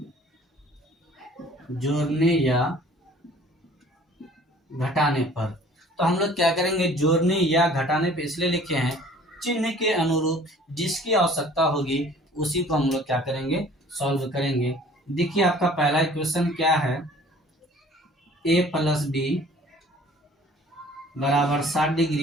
जोड़ने या घटाने पर। तो हम लोग क्या करेंगे, जोड़ने या घटाने पे इसलिए लिखे हैं, चिन्ह के अनुरूप जिसकी आवश्यकता होगी उसी को हम लोग क्या करेंगे, सॉल्व करेंगे। देखिए आपका पहला इक्वेशन क्या है, a प्लस बी बराबर 60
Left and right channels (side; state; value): both; normal; correlation 0.51